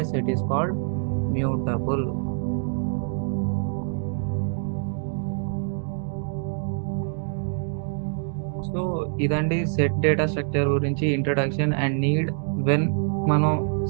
set is called mutable. So ఇదండి సెట్ డేటా స్ట్రక్చర్ గురించి ఇంట్రడక్షన్ అండ్ నీడ్. వెన్ మనం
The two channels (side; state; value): left; silent; 59 dB below the other